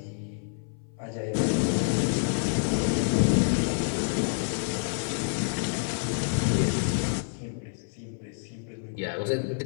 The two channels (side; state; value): right; silent; 59 dB below the other